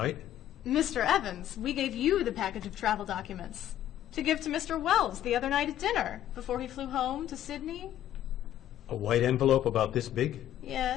Mr. Evans, we gave you the package of travel documents to give to Mr. Wells the other night at dinner before he flew home to Sydney. A white envelope about this big?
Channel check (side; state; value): right; quieter; 12.0 dB